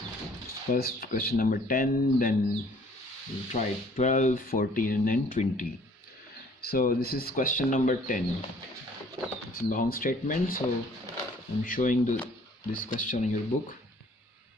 First question number 10, then we'll try 12, 14 and then 20. So this is question number 10. It's a long statement, so I'm showing this question in your book.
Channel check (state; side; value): normal; both; correlation 0.56